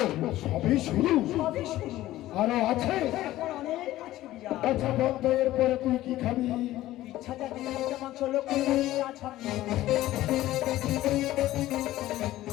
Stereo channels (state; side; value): quieter; right; 15.3 dB